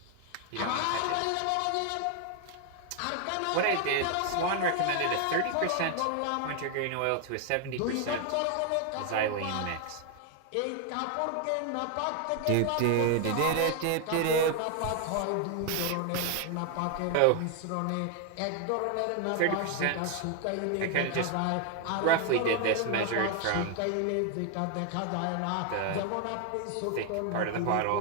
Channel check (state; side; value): different; both; correlation 0.00